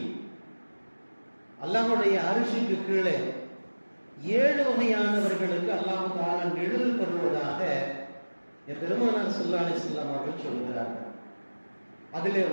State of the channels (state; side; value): inverted; both; correlation -1.00